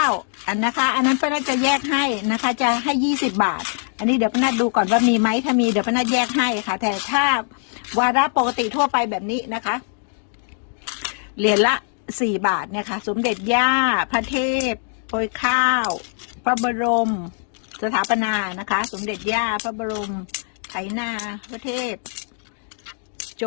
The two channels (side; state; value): right; silent; 64 dB below the other